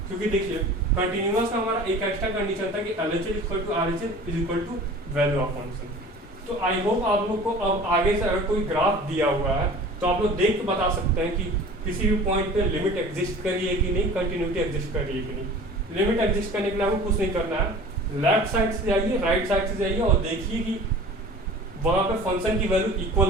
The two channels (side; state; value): both; normal; correlation 0.42